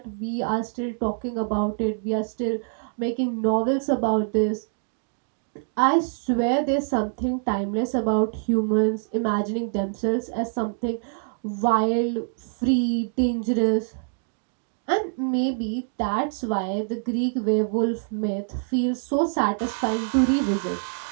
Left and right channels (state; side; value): silent; left; digital silence